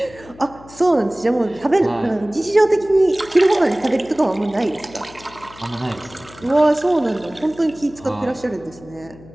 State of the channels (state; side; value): noise; left; hum, 21 dB below the sound